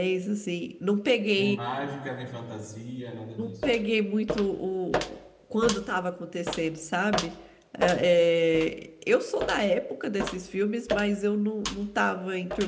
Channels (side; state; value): both; identical; correlation 1.00